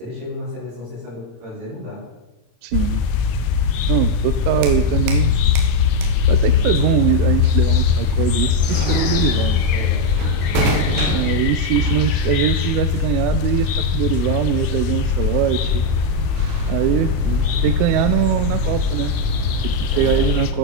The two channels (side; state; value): left; late; 26 ms